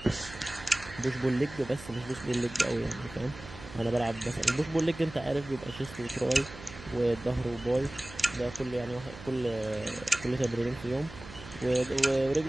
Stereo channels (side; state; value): right; noise; hum, 15 dB below the sound